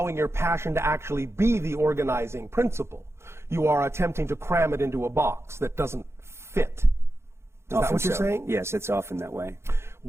your passion to actually be the organizing principle. You are attempting to cram it into a box that doesn't fit. Is that what you're saying? Yes, it's often that way.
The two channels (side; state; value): left; late; 0.13 ms